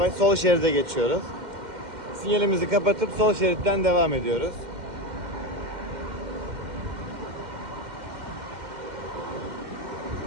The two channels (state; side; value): late; left; 2.1 ms